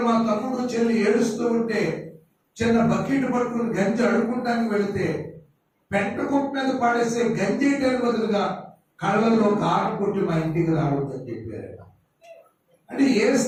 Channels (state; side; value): identical; both; correlation 1.00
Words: మా తమ్ముడు చెల్లి ఏడుస్తూ ఉంటే చిన్న బకెట్ పట్టుకుని గంజి అడుక్కుంటానికి వెళితే పెంట కుప్ప మీద పడేసే గంజి వేయడానికి బదులుగా కళ్ళల్లో కారం కొట్టి మా ఇంటికి రావద్దని చెప్పారు. అంటే ఏ